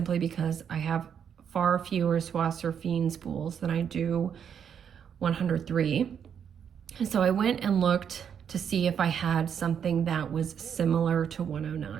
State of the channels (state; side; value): quieter; left; 8.0 dB